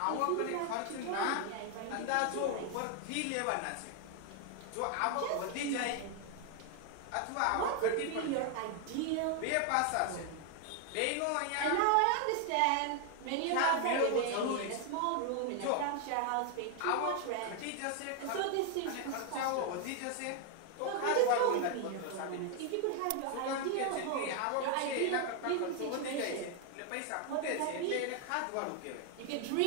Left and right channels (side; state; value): both; different; correlation 0.00